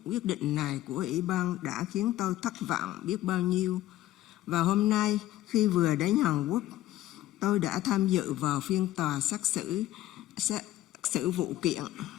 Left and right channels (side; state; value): right; quieter; 14.6 dB